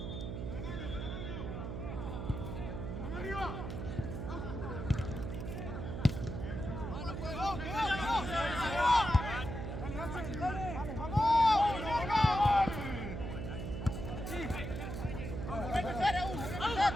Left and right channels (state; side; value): noise; right; hum, 5 dB below the sound